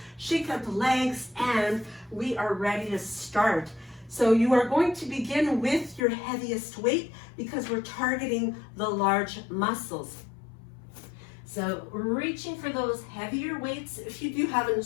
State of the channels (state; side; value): drops out; right; at 6.0 s